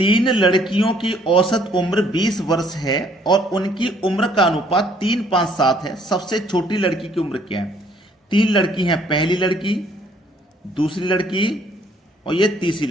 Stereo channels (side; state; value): both; normal; correlation 0.63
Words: लड़कियों की औसत उम्र 20 वर्ष है और उनकी उम्र का अनुपात 3-5-7 है। सबसे छोटी लड़की की उम्र क्या है? 3 लड़की हैं, पहली लड़की, दूसरी लड़की और ये तीसरी